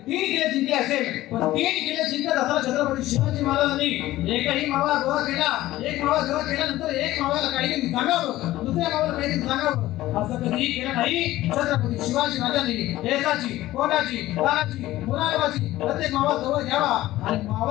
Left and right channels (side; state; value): right; quieter; 15.9 dB